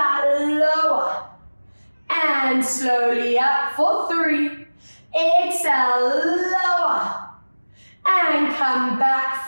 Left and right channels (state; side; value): inverted; both; correlation -1.00